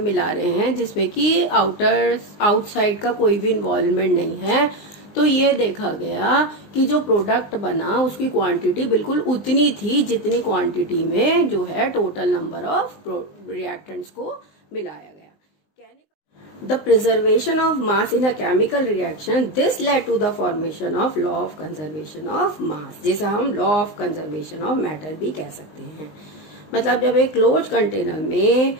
मिला रहे हैं जिसमें कि आउटसाइड का कोई भी इन्वॉल्वमेंट नहीं है, तो ये देखा गया कि जो प्रोडक्ट बना उसकी क्वांटिटी बिल्कुल उतनी थी जितनी क्वांटिटी में जो है टोटल नंबर ऑफ रिएक्टेंट्स को मिलाया गया। The preservation of mass in a chemical reaction, this led to the formation of law of conservation of mass, जिसे हम law of conservation of matter भी कह सकते हैं। मतलब जब एक क्लोज कंटेनर में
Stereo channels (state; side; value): late; right; 19 ms